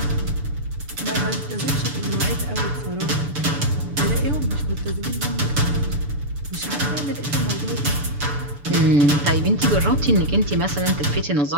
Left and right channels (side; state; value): left; late; 6.9 ms